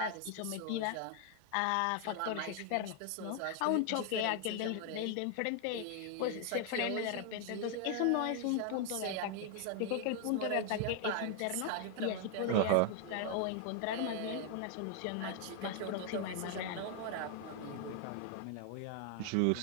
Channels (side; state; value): both; different; correlation 0.00